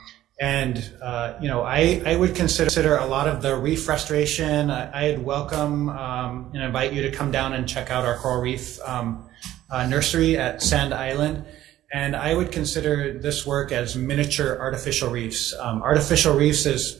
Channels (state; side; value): quieter; left; 13.7 dB